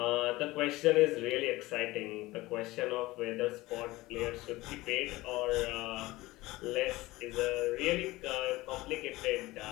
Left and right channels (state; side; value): quieter; right; 19.4 dB